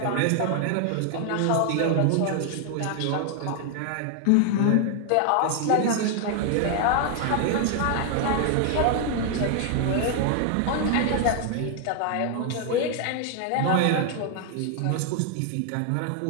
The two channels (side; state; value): both; different; correlation 0.00